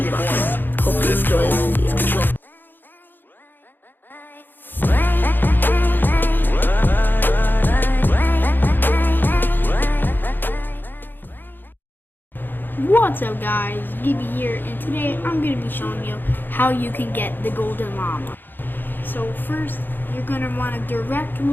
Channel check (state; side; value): late; right; 0.093 ms